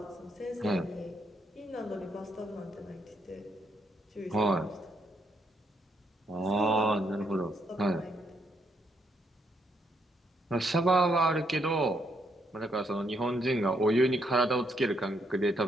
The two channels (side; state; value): both; normal; correlation 0.74